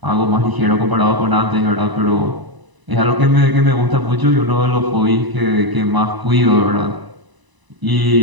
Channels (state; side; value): late; left; 1.0 ms